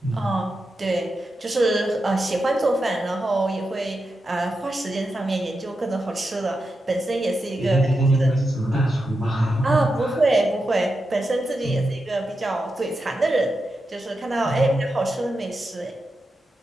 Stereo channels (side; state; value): both; normal; correlation 0.88